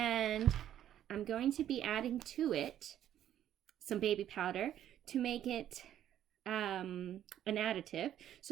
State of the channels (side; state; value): left; quieter; 11.1 dB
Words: I'm going to be adding to it some baby powder to make it an additive.